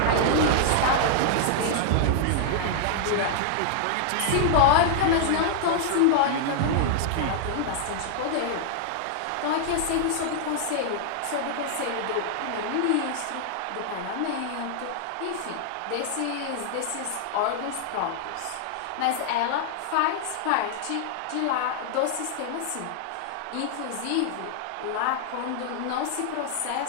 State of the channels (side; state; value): both; different; correlation -0.01